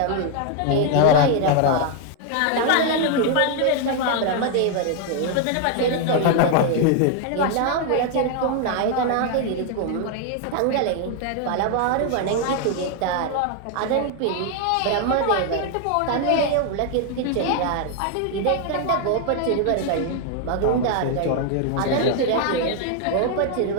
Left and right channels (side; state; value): both; different; correlation 0.00